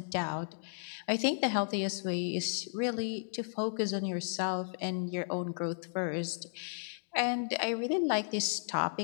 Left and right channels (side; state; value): right; silent; digital silence